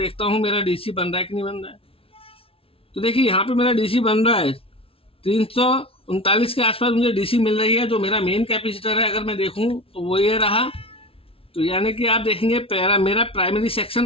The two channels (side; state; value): right; late; 0.26 ms